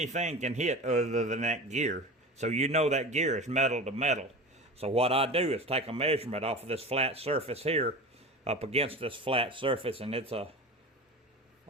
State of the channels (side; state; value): both; normal; correlation 0.31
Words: can hit other than that gear. So you know that gear is metal to metal. So what I do is take a measurement off of this flat surface here, up against this flat surface, and it's a